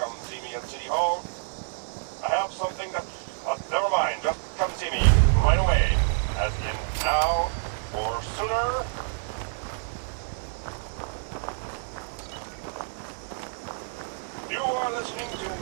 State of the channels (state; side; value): silent; left; digital silence